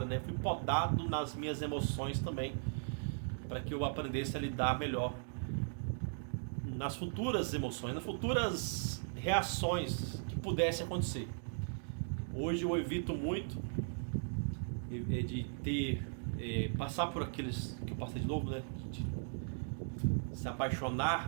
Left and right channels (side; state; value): left; silent; digital silence